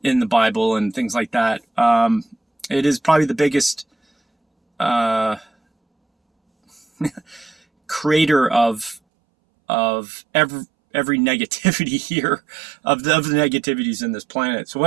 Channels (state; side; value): drops out; left; at 9.0 s